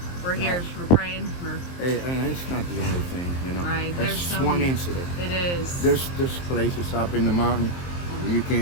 we're here. We're praying. Hey, and it's not the only thing, you know. Right. That's There's just one incident. It is. There's places up in the mountain you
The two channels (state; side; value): late; right; 23 ms